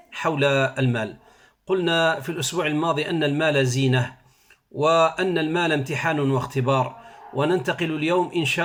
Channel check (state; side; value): identical; both; correlation 1.00